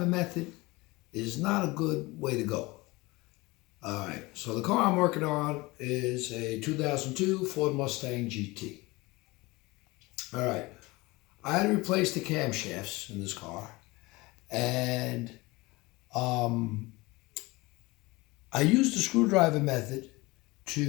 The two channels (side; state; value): right; quieter; 22.6 dB